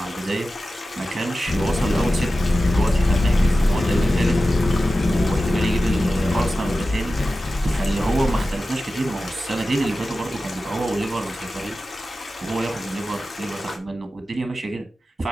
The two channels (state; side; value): normal; both; correlation 0.94